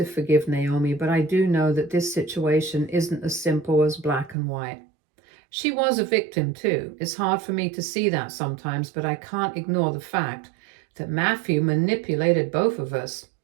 forgive Naomi, but I do know that this situation isn't as simple as black and white. She was a victim too. It's hard for me to see that sometimes, but I can't ignore the fact that Matthew manipulated both of us.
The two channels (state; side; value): drops out; left; at 4.4 s